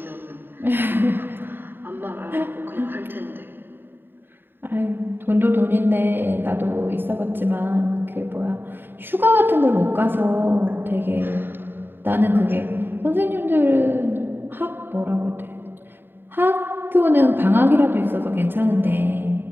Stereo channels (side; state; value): left; late; 0.098 ms